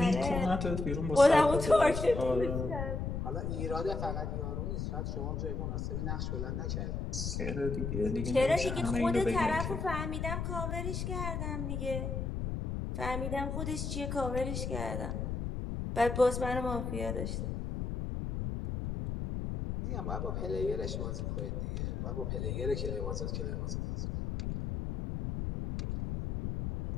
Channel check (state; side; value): noise; left; rumble, 3 dB below the sound